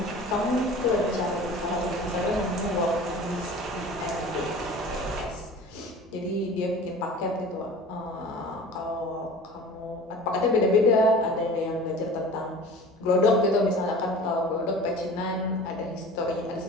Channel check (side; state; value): both; normal; correlation 0.40